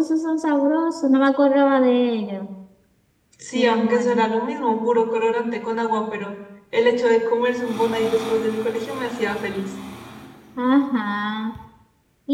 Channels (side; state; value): both; identical; correlation 1.00